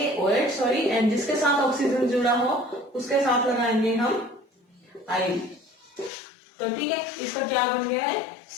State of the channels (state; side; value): drops out; right; at 6.1 s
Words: OH, सॉरी, एंड जिसके साथ ऑक्सीजन जुड़ा हो उसके साथ लगाएंगे हम आयल। तो ठीक है, इसका क्या बन गया है,